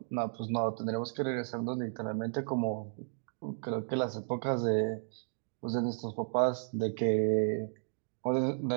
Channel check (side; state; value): left; silent; digital silence